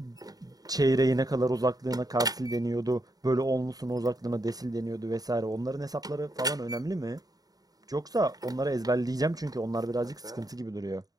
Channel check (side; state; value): left; late; 0.18 ms